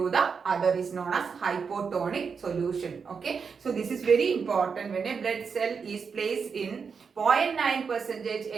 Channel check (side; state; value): left; quieter; 5.8 dB